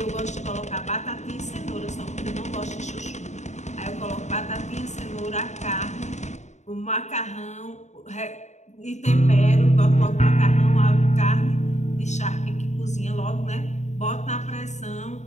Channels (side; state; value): right; late; 0.34 ms